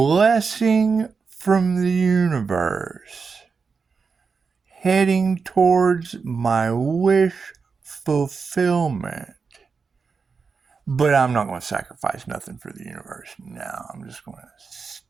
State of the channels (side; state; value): left; quieter; 5.1 dB